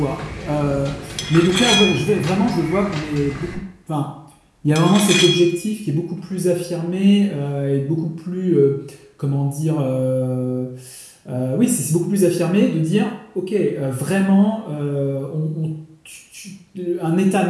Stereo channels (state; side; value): identical; both; correlation 1.00